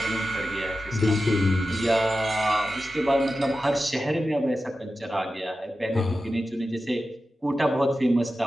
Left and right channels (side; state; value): both; normal; correlation 0.92